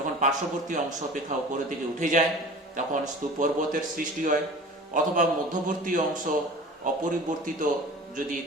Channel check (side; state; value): both; normal; correlation 0.40